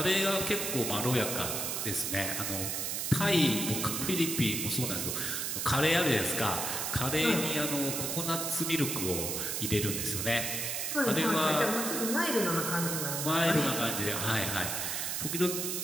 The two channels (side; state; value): right; noise; hiss, 1 dB below the sound